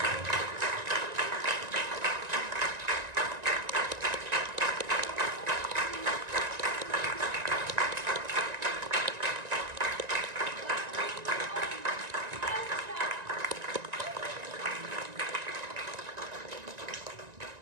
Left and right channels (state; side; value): late; left; 1.9 ms